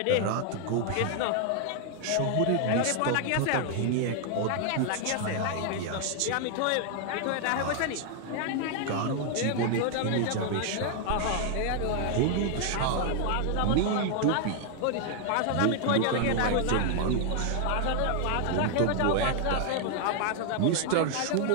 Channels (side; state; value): both; different; correlation 0.00